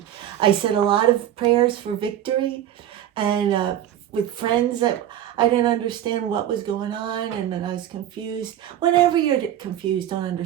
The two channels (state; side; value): quieter; left; 11.4 dB